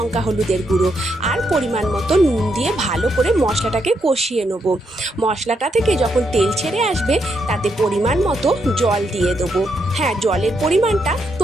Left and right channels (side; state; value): both; normal; correlation 0.79